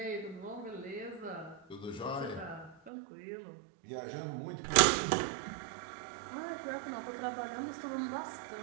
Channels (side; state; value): left; drops out; at 2.9 s